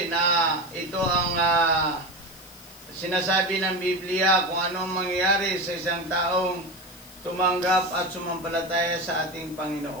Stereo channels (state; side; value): noise; left; hiss, 20 dB below the sound